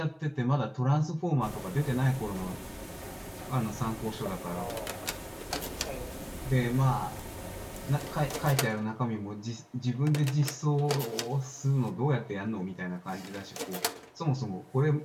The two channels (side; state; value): both; identical; correlation 1.00